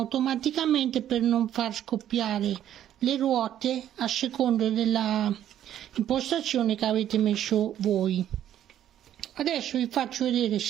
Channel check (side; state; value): left; quieter; 11.1 dB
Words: per non far scoppiare le ruote a seconda della impostazione che avete messo voi. Adesso vi faccio vedere,